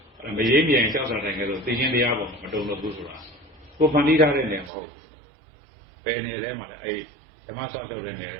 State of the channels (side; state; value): left; drops out; at 4.7 s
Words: မရေးမြန်ကြောက်စားတိုင်းကဲဆိုသိချင်းတရားပေါ်မတုံလို့ဘူးဆိုတာကိုဖန်တီးထားတဲ့နေမဟုတ်ဘယ်နေထဲမှာလဲအဲ့ဓမ္မဆောင်လျှောက်တဲ့နေထဲ